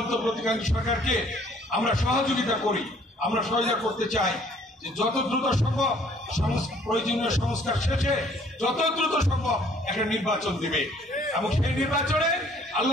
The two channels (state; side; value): normal; both; correlation 0.59